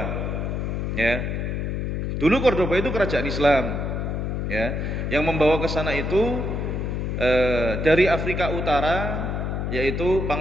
Ya. Dulu Cordoba itu kerajaan Islam. Ya. Yang membawa ke sana itu dari Afrika Utara, yaitu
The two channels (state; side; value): noise; left; hum, 2 dB below the sound